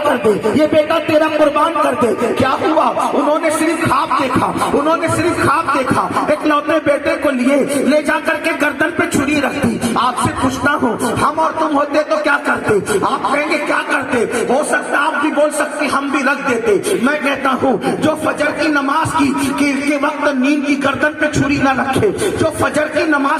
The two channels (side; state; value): both; identical; correlation 1.00